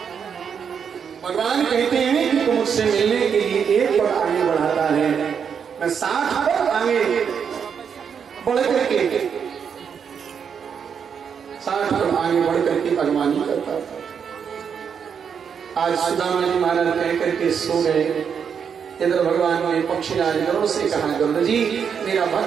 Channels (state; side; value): quieter; left; 7.1 dB